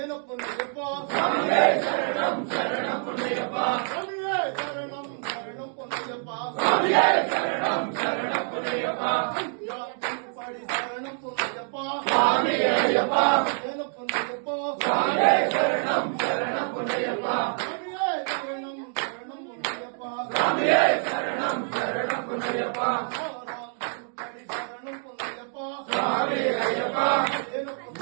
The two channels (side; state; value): left; silent; 56 dB below the other